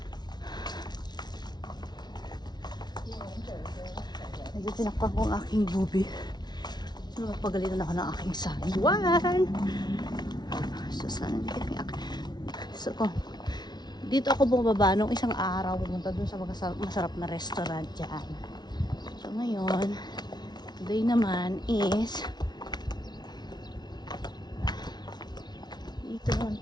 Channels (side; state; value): right; late; 0.20 ms